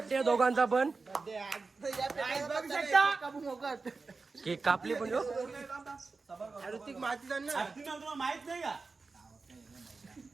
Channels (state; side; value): quieter; left; 4.1 dB